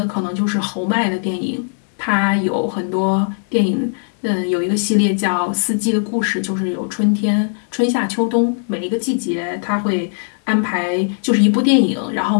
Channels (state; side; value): silent; right; 61 dB below the other